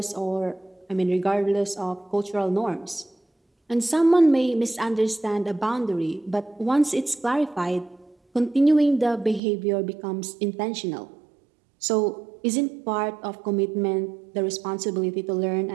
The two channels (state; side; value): drops out; left; at 9.4 s